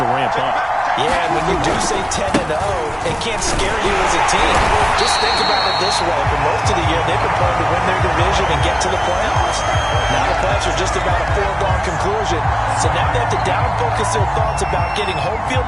to ramp up. Yeah, and when you do say 10-0, it can't scare you as a team. Just think about it this way. For most of the year, they've been playing to win their division and get to the playoffs. Now the playoffs are just about a foregone conclusion. So now they have to down-focus their thoughts about getting home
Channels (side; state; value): both; identical; correlation 1.00